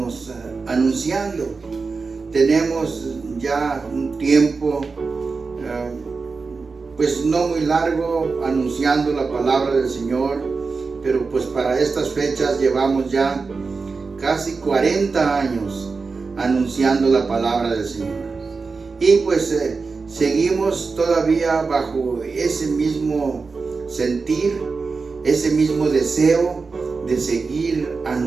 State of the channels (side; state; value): left; quieter; 4.5 dB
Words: anunciando. Tenemos ya un tiempo pues no muy largo anunciando la palabra del Señor, pero pues para estas fechas llevamos ya casi 40 años anunciando la palabra del Señor. Y pues seguimos todavía bajo ese mismo sentir, ese mismo deseo de seguir